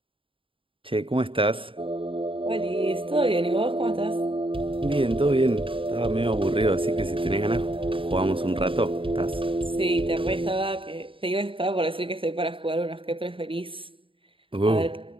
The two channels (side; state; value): left; late; 0.25 ms